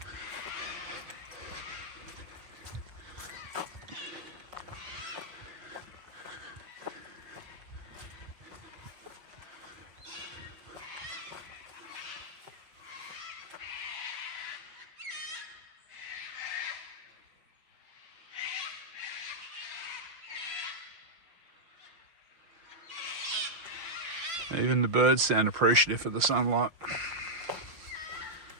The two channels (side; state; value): left; late; 5.8 ms